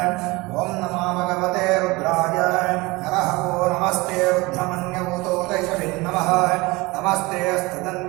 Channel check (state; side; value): quieter; left; 23.1 dB